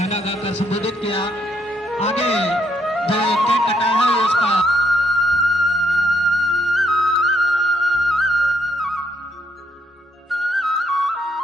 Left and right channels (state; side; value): normal; both; correlation 0.74